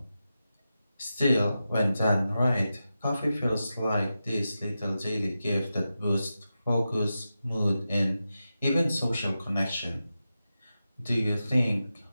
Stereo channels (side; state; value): both; inverted; correlation -0.91